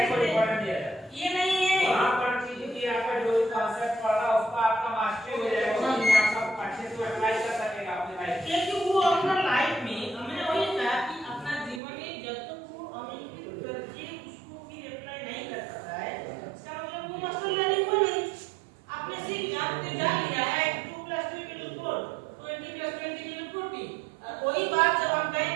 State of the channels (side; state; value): left; drops out; at 11.8 s